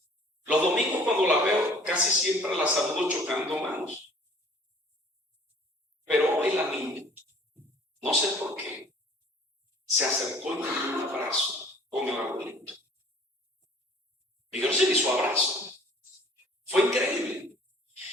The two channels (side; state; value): both; normal; correlation 0.52